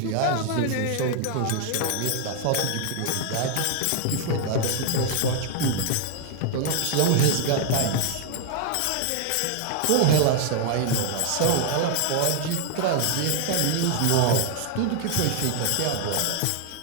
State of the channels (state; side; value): different; both; correlation 0.00